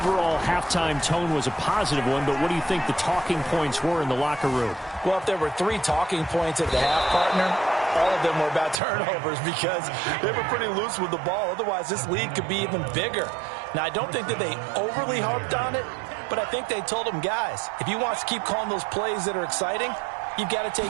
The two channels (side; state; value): left; drops out; at 8.8 s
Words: halftime tone was a positive one, but what do you think the talking points were in the locker room? Well, if there were 3 talking points at the half, partner, all of them were about turnovers because they were pretty loose with the ball. Otherwise, this lead could be even bigger. Now, I don't think that they overly harped on it, but I think they told them, guys, if you want to keep calling those plays that are exciting, you've got to